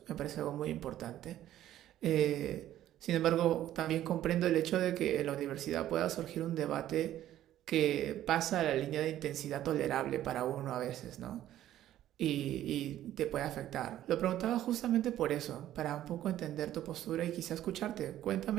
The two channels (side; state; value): left; quieter; 12.7 dB